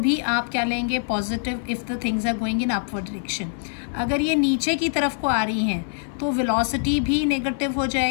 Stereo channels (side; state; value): right; silent; 56 dB below the other